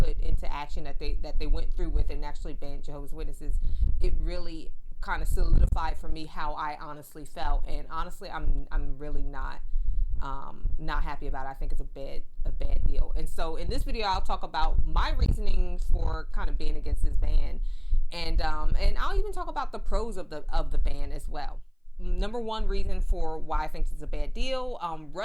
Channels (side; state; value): both; identical; correlation 1.00